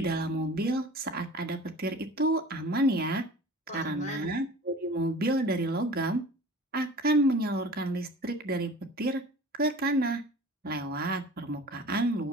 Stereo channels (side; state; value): both; normal; correlation 0.41